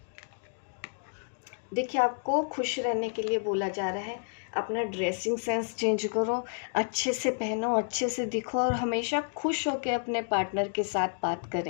देखिए, आपको खुश रहने के लिए बोला जा रहा है, अपना ड्रेसिंग सेंस चेंज करो, अच्छे से पहनो, अच्छे से दिखो और हमेशा खुश होकर अपने पार्टनर के साथ बात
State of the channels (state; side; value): silent; right; digital silence